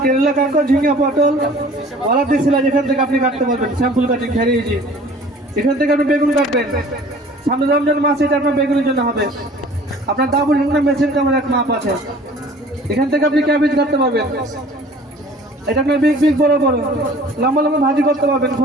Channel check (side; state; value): both; normal; correlation 0.48